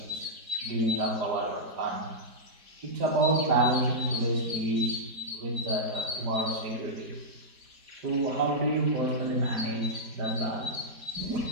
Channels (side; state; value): left; late; 4.2 ms